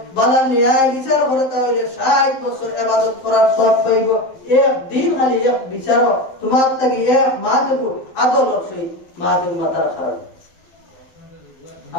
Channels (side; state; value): right; late; 12 ms